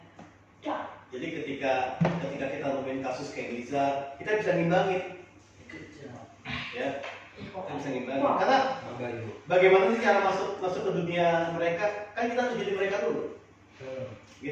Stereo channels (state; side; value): identical; both; correlation 1.00